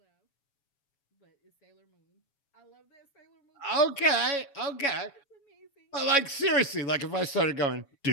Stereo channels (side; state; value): right; late; 7.2 ms